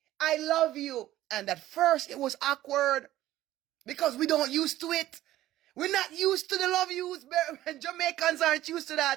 I love you. And at first it was awkward because we don't used to it. We're not used to the love yous. Jamaicans aren't used to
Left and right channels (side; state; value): left; quieter; 14.6 dB